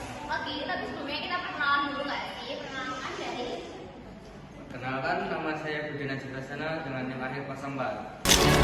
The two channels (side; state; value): both; identical; correlation 1.00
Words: Oke, tapi sebelumnya kita perkenalan dulu nggak sih? Perkenalkan dari Perkenalkan, nama saya Budi Najib Rasana dengan NIM akhir 04.